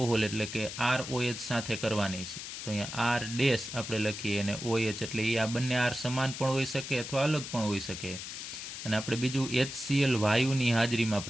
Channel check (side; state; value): left; noise; hiss, 8 dB below the sound